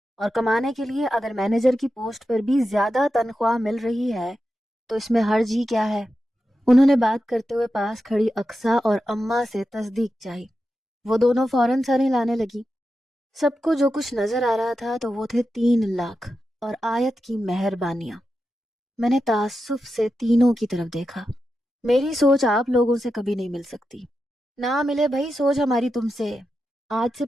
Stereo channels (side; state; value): both; normal; correlation 0.90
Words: اور کمانے کے لیے اگر مینیجر کی پوسٹ پر بھی زیادہ تنخواہ مل رہی ہے تو اس میں حرج ہی کیا ہے؟ انہوں نے بات کرتے ہوئے پاس کھڑی اقصیٰ اور اماں سے تصدیق چاہی۔ وہ دونوں فوراً سر ہلانے لگی۔ سب کو جو کچھ نظر آ رہا تھا تو وہ تھے 3 لاکھ اور آیت کی مہربانیاں۔ میں نے تعصب سے تینوں کی طرف دیکھا۔ میری سوچ آپ لوگوں سے کبھی نہیں مل سکتی، نہ ملے بھائی سوچ ہماری تم سے۔ آج سے